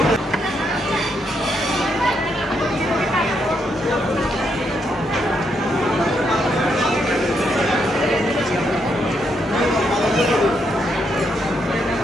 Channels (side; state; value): both; normal; correlation 0.78